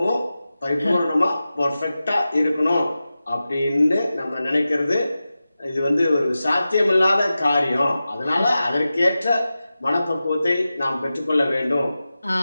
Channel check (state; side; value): inverted; both; correlation -0.94